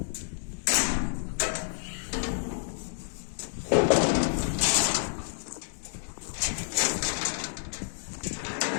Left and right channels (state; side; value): silent; right; digital silence